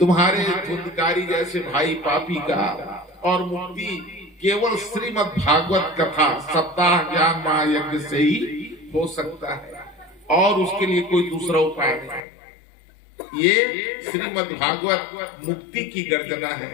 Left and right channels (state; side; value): drops out; right; at 12.2 s